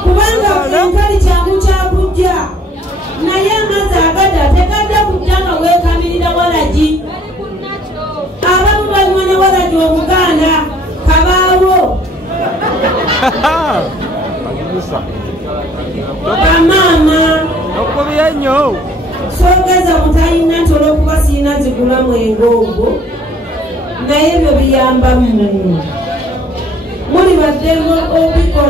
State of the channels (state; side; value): normal; both; correlation 0.59